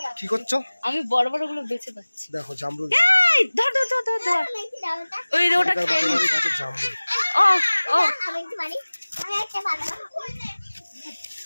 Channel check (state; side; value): inverted; both; correlation -1.00